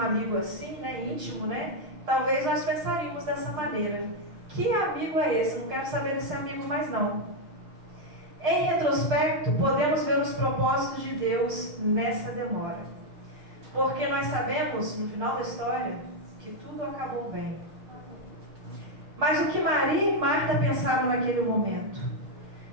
amigo assim, né, íntimo, né, talvez nós pensaríamos dessa maneira: que amigo é esse? Não quero saber desse amigo mais não. Em retrospecto, podemos ver os propósitos de Deus nessa demora, porque nós sabemos, no final da história, que tudo acabou bem. Mas o que Maria e Marta pensaram naquele momento?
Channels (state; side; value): late; left; 6.6 ms